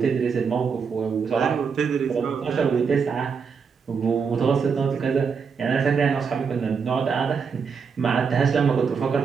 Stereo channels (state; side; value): quieter; left; 5.9 dB